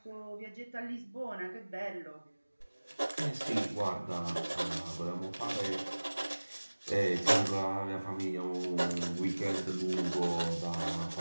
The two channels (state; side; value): inverted; both; correlation -1.00